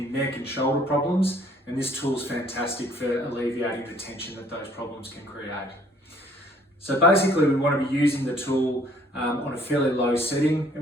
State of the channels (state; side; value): normal; both; correlation 0.60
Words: neck and shoulder problems, and this tool is fantastic for alleviating the tension that those problems can create. So basically, we want to be using the tool on a fairly low setting,